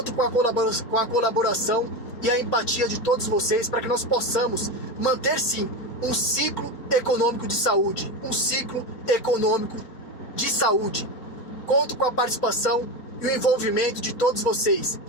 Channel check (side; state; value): right; late; 4.2 ms